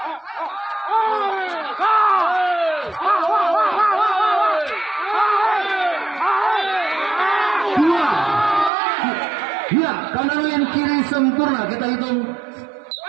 Dua, ya, kanan yang kiri sempurna, kita hitung.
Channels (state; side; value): drops out; left; at 8.7 s